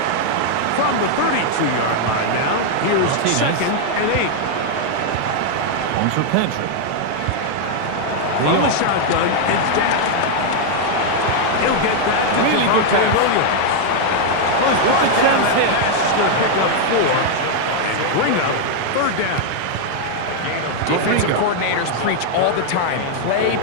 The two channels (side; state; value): both; different; correlation 0.00